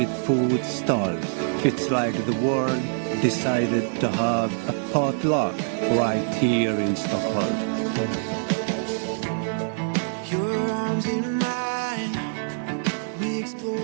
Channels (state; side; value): silent; left; 62 dB below the other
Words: food stalls. It's like the world decided to have a potluck right here in Stockholm. Your arms in mine, we